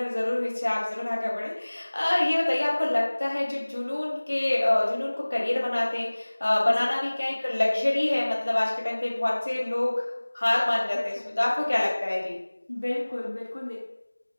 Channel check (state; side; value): inverted; both; correlation -1.00